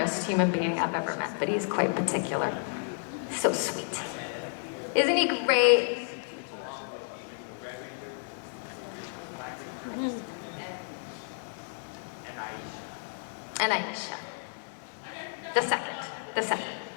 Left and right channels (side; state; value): right; silent; 57 dB below the other